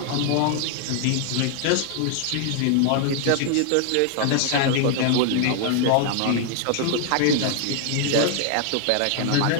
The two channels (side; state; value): both; different; correlation 0.00